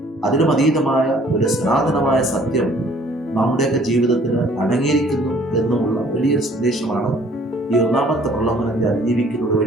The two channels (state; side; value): normal; both; correlation 0.57